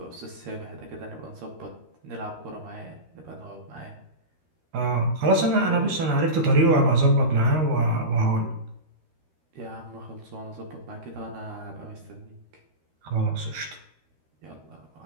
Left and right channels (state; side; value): late; left; 13 ms